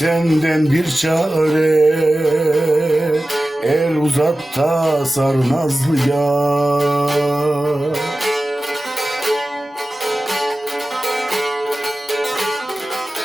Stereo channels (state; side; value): normal; both; correlation 0.96